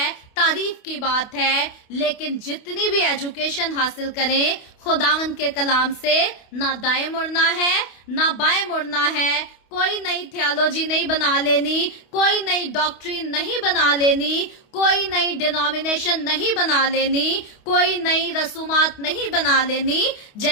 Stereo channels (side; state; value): right; late; 28 ms